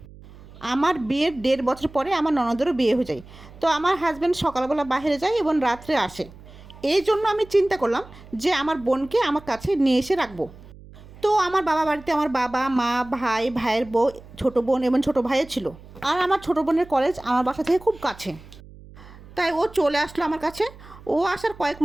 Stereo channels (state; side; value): noise; right; hum, 20 dB below the sound